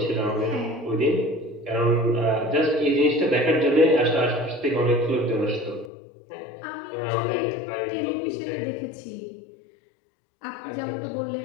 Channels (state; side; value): drops out; right; at 5.9 s